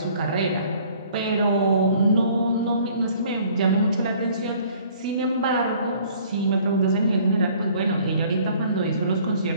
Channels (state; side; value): inverted; both; correlation -0.56